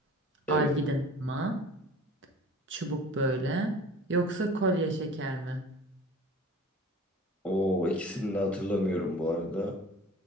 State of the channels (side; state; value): both; normal; correlation 0.44